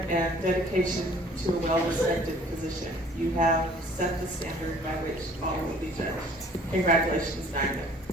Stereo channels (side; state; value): both; normal; correlation 0.54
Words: and dedication to a well-respected position. You have set the standard by which all will be judged. Congratulations,